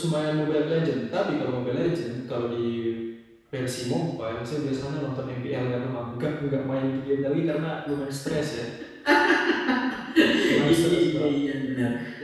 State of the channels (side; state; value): both; identical; correlation 1.00